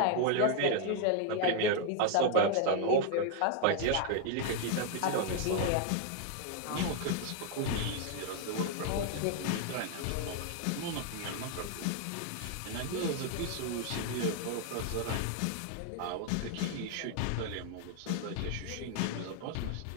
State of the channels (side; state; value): both; different; correlation 0.00